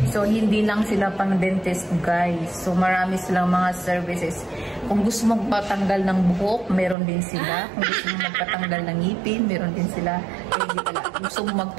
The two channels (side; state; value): left; drops out; at 7.0 s